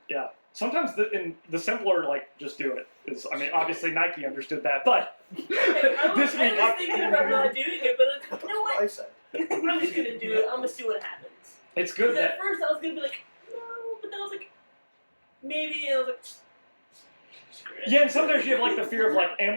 yeah, sometimes the simpler, like, just do it is, I mean, obviously Nike understood that, but I was this week, thinking about not doing it, but you know what? I said. I'm just going to do it. I'm going to see what happens. it's good Because that, at first I was going to be like, no, but then I was like, maybe, and I was like, screw it. yeah, and sometimes you have like the fear of like,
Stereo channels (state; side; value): inverted; both; correlation -1.00